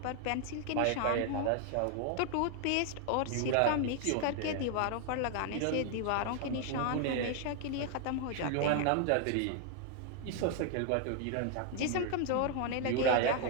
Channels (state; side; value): different; both; correlation 0.00